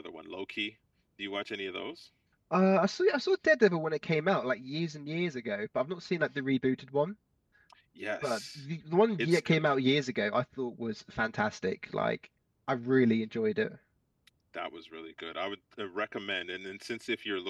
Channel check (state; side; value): identical; both; correlation 1.00